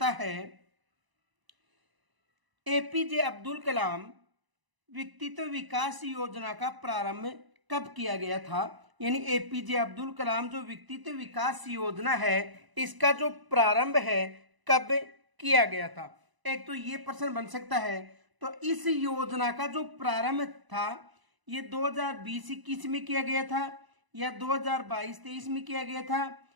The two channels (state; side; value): late; left; 1.0 ms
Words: है एपीजे अब्दुल कलाम व्यक्तित्व विकास योजना का प्रारंभ कब किया गया था। यानी एपीजे अब्दुल कलाम जो व्यक्तित्व विकास योजना है इसका जो प्रारंभ है कब किया गया था। एक तो ये प्रश्न बन सकता है। तो इस योजना का जो प्रारंभ था ये 2020-21 में किया गया था या 2022-23 में किया गया था,